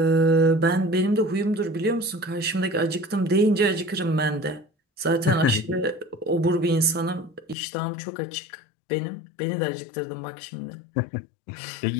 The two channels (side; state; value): right; drops out; at 7.6 s